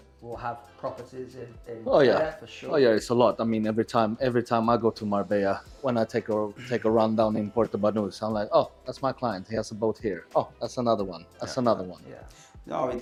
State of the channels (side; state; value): both; identical; correlation 1.00